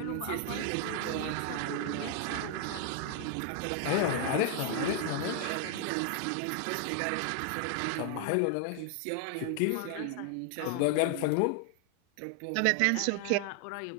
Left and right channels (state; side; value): different; both; correlation 0.00